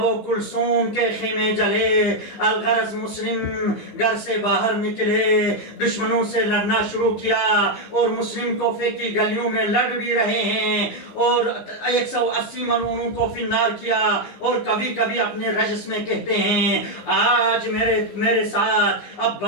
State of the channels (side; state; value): right; late; 15 ms